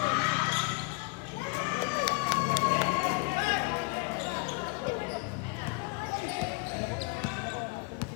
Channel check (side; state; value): right; quieter; 32.3 dB